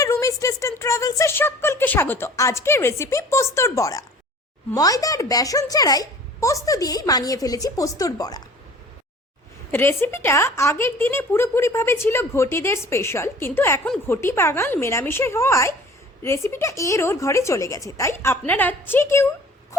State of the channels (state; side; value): normal; both; correlation 0.47